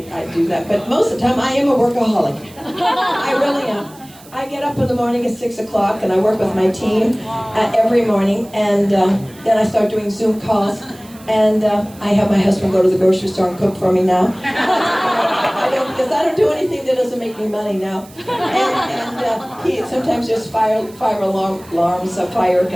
do that, but most of the time I am a workaholic. I really am. I get up in the morning at 6 o'clock and I work with my team every morning, and then I start doing Zoom calls, and I have my husband go to the grocery store and cook for me now. Because I don't do anything that doesn't make me money now. And he sometimes just fire alarms of fire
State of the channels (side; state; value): right; noise; hiss, 23 dB below the sound